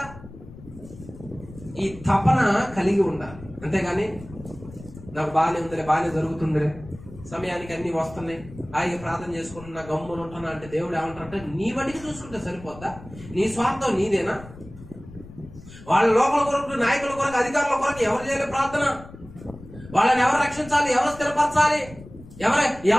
ఈ తపన కలిగి ఉండాలి. అంతేగాని నాకు బాగానే ఉందిలే, బాగానే జరుగుతుందిలే, సమయానికి అన్ని వస్తున్నాయి, ఆయన ప్రార్థన చేసుకుంటున్నా, గమ్మున ఉంటున్నా అంటే దేవుడు ఏమంటారంటే నీ బడికి చూసుకుంటే సరిపోద్దా? నీ స్వార్థం నీదేనా? వాళ్ళ లోపల కొరకు, నాయకుల కొరకు, అధికారుల కొరకు ఎవరు చేయలే ప్రార్థన? వాళ్ళని ఎవరు రక్షించాలి, ఎవరు స్థిరపరచాలి,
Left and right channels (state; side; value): noise; left; rumble, 17 dB below the sound